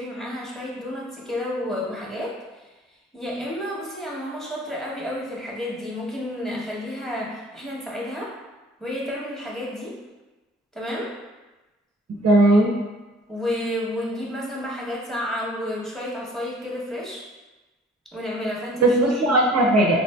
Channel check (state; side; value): normal; both; correlation 0.51